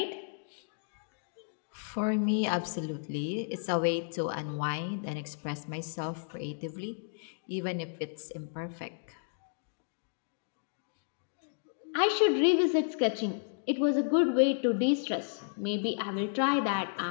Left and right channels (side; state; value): right; silent; digital silence